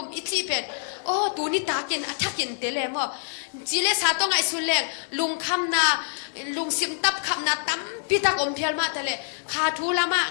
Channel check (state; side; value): silent; right; 61 dB below the other